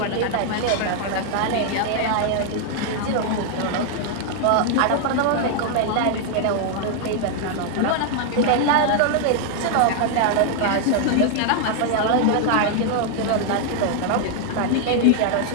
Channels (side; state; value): both; different; correlation 0.00